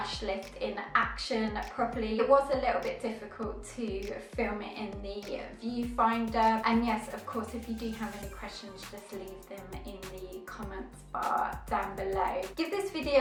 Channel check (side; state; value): both; identical; correlation 1.00